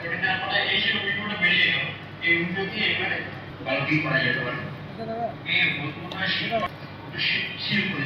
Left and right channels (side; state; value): both; identical; correlation 1.00